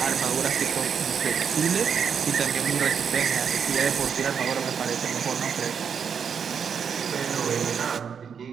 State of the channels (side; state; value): left; quieter; 7.0 dB